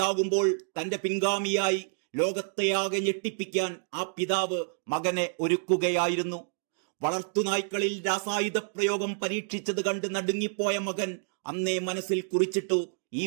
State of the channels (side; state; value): left; silent; digital silence